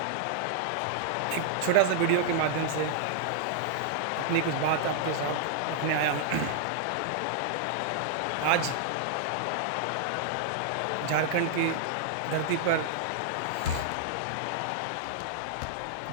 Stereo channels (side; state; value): both; different; correlation -0.01